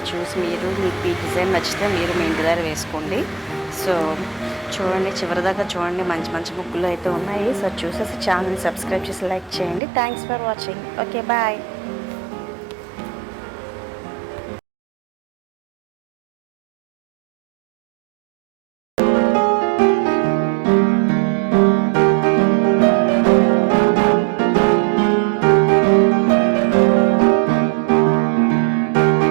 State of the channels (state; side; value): drops out; left; at 9.8 s